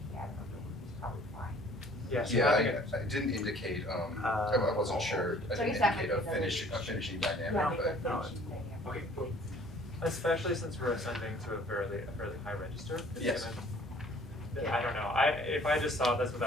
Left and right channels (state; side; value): normal; both; correlation 0.54